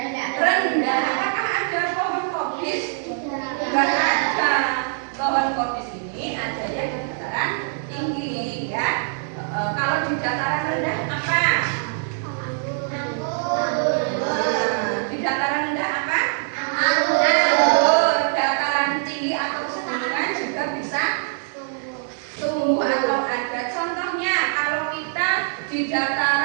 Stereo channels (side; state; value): left; silent; digital silence